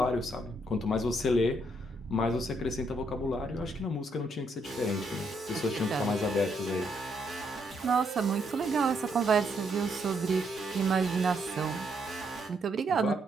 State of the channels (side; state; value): both; normal; correlation 0.75